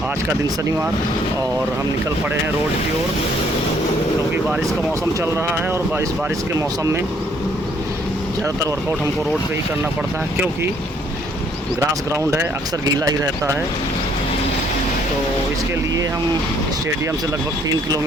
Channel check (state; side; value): normal; both; correlation 0.65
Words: आज का दिन शनिवार और हम निकल पड़े हैं रोड की ओर, क्योंकि बारिश का मौसम चल रहा है और बारिश के मौसम में ज़्यादातर वर्कआउट हमको रोड पे ही करना पड़ता है, क्योंकि ग्रास ग्राउंड है, अक्सर गीला ही रहता है। तो इसके लिए हम स्टेडियम से लगभग 3